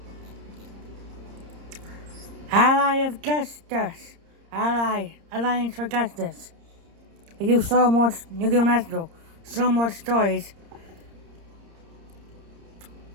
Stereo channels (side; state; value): left; late; 30 ms